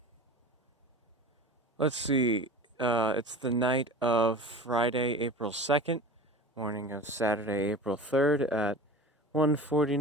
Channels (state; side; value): normal; both; correlation 0.35